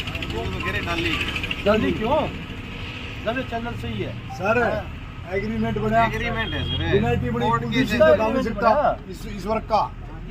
जल्दी क्यों जब ये चैनल सही है सर एग्रीमेंट बना एग्रीमेंट है सर यूनाइटेड बड़ी पुलिस का काम नहीं सकता इस वर्क का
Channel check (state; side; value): identical; both; correlation 1.00